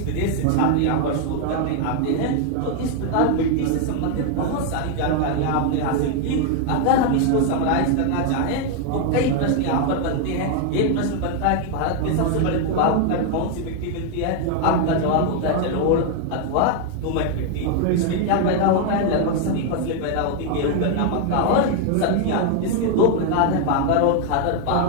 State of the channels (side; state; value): both; different; correlation 0.00